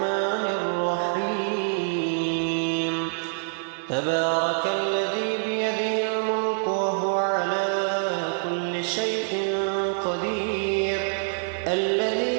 الرحيم. تبارك الذي بيده الملك وهو على كل شيء قدير،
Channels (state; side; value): silent; left; digital silence